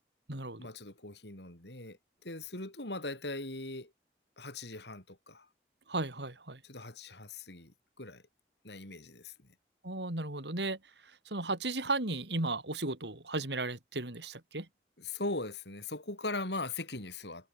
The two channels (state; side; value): normal; both; correlation 0.04